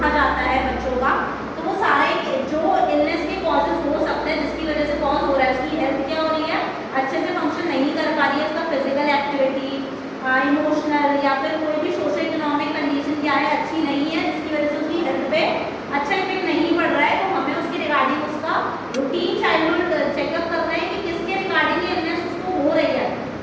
जाता है बच्चों का। तो वो सारे जो इलनेस के कॉजेज हो सकते हैं, जिसकी वजह से कॉज हो रहा है, उसकी हेल्थ क्या हो रही है? अच्छे से फंक्शन नहीं कर पा रही है, उसका फिजिकल एक्टिविटी, इमोशनल या फिर कोई भी सोशल इकोनॉमिक कंडीशन क्या है? अच्छी नहीं है, जिसकी वजह से उसकी हेल्थ पे अच्छा इफेक्ट नहीं पड़ रहा है। तो हमें उसके रिगार्डिंग उसका रूटीन चाइल्डहुड चेकअप करना है कि किसके रिगार्डिंग इलनेस उसको हो रही है।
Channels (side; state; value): both; identical; correlation 1.00